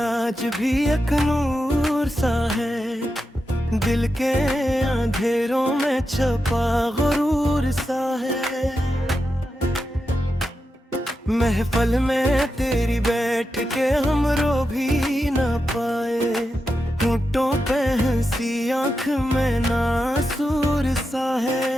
भी एक नूर सा है, दिल के अंधेरों में छपा गुरूर सा है। महफल में तेरी बैठ के हम रो भी ना पाए, होठों पे हंसी आँख में नासूर सा है।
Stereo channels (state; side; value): normal; both; correlation 0.88